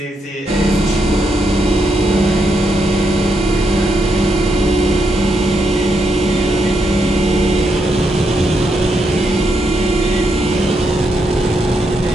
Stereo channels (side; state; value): both; normal; correlation 0.80